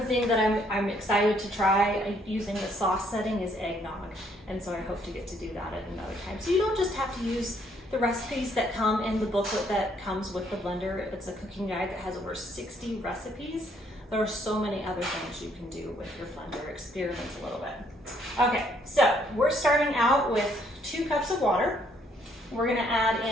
that I'm excited to try using the sauce setting is eggnog, and so I hope to get to do that at another time. So you don't just have to use the recipes that come in the booklet that comes with the blender. It's a cooking guide that has over 60 recipes. There are so many other things you can do with your blender. Experiment a little bit. Okay, so we're starting out with 2 cups of water. We're gonna add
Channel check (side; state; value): both; normal; correlation 0.67